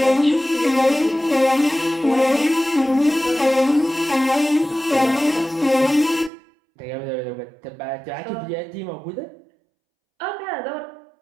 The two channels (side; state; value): left; drops out; at 6.3 s